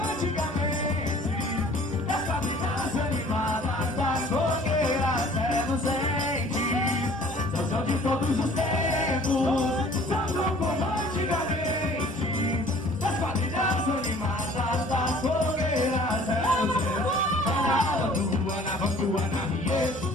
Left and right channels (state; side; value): normal; both; correlation 0.51